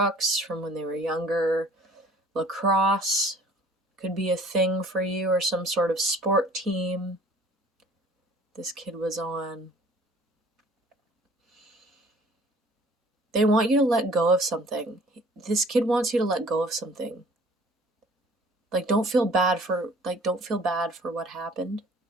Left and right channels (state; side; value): normal; both; correlation 0.52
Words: from when they were younger. Lacrosse could be a thing for you, or some sort of sport team this kid was on. They want you to let go of something. This kid wants you to let go of something. Like, don't feel bad for what happened.